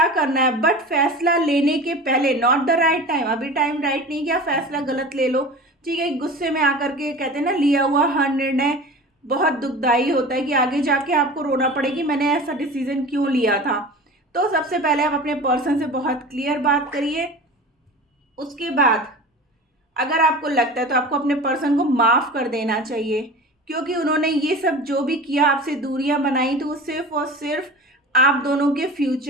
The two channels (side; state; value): both; normal; correlation 0.35